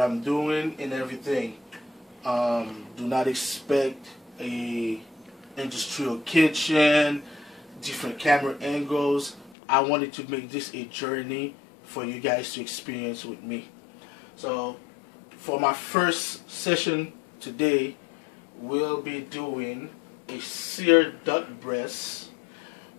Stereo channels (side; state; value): right; drops out; at 9.6 s